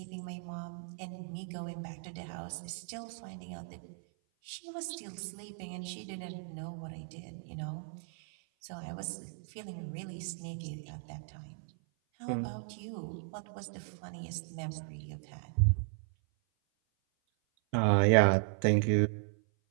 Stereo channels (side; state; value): left; silent; 54 dB below the other